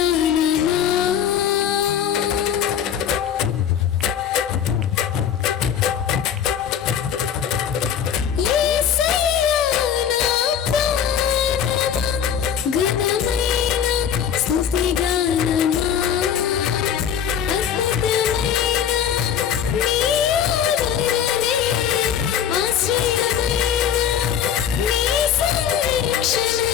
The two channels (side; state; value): right; quieter; 8.7 dB